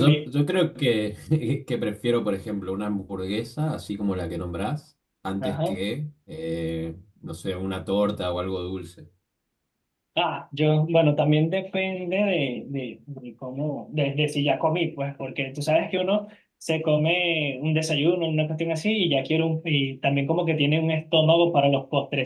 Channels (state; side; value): identical; both; correlation 1.00